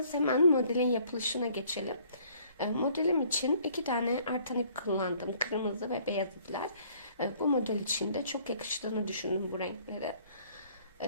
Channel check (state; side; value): inverted; both; correlation -0.59